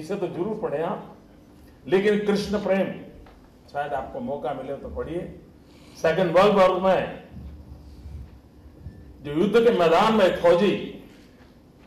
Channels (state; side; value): identical; both; correlation 1.00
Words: तो जरूर पढ़े आप, लेकिन कृष्ण प्रेम शायद आपको मौका मिले तो पढ़िए। सेकेंड वर्ल्ड वॉर में जो युद्ध के मैदान में फौजी